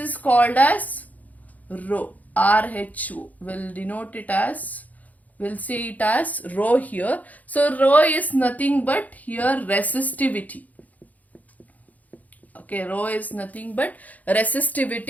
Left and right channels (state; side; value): late; right; 0.077 ms